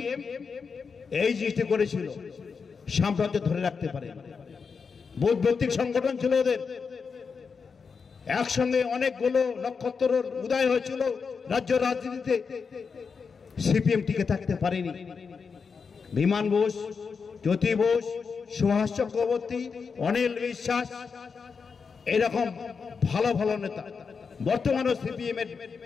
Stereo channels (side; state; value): right; quieter; 5.5 dB